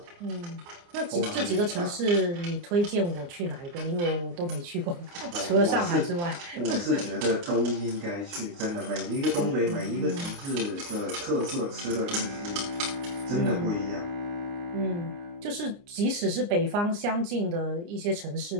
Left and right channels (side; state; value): left; late; 29 ms